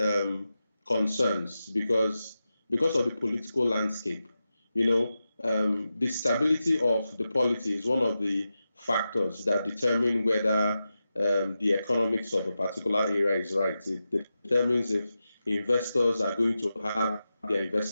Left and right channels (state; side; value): inverted; both; correlation -0.91